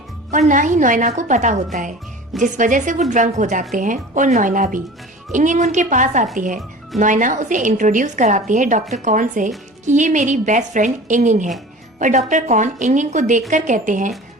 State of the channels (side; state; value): both; normal; correlation 0.39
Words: और ना ही नोएना को पता होता है, जिस वजह से वो ड्रंक हो जाते हैं और नोएना भी। इंगिंग उनके पास आती है। नोएना उसे इंट्रोड्यूस कराती है डॉक्टर कॉन से कि ये मेरी बेस्ट फ्रेंड इंगिंग है। पर डॉक्टर कॉन इंगिंग को देखकर कहते हैं